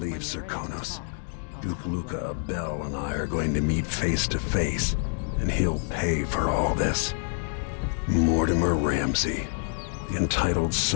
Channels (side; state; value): right; silent; digital silence